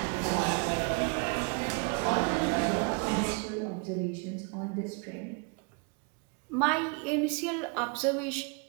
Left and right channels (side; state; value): left; quieter; 34.6 dB